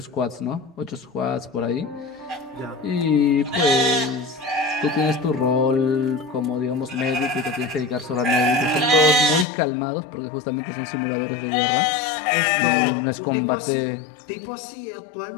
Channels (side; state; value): right; drops out; at 9.5 s